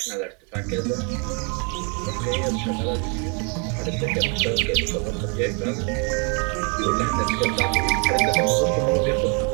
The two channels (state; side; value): quieter; left; 37.0 dB